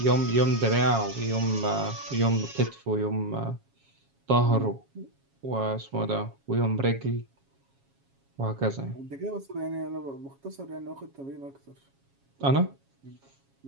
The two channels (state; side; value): late; left; 7.3 ms